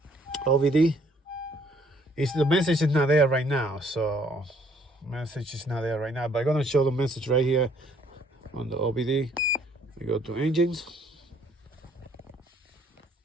OBD. The message is not there right now, so message is not there right now. But I'm gonna show the message right here on the OBD. We go to engines.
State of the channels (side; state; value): both; normal; correlation 0.64